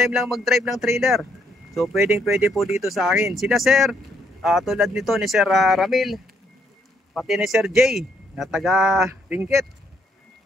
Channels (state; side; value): normal; both; correlation 0.72